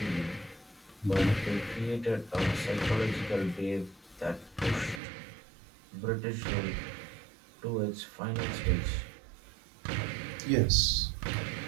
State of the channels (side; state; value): left; drops out; at 5.0 s